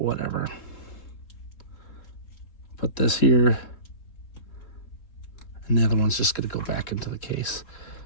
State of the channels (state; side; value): late; right; 3.7 ms